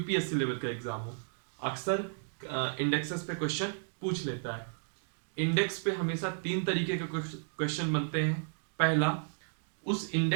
लेवल का एग्जाम हो। अक्सर इंडेक्सेस पे क्वेश्चन पूछ लेता है। इंडेक्स पे हमेशा तीन तरीके के क्वेश्चन बनते हैं। पहला, उस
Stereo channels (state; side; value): silent; left; digital silence